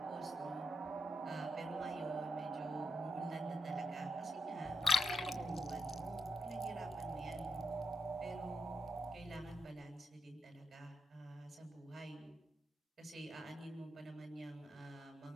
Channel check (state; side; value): normal; both; correlation 0.83